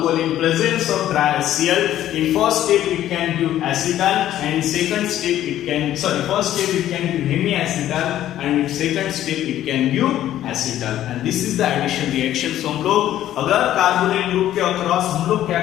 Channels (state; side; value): quieter; right; 12.5 dB